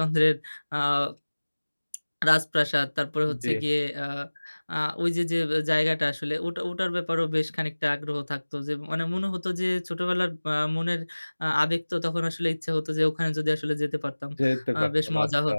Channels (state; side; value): inverted; both; correlation -1.00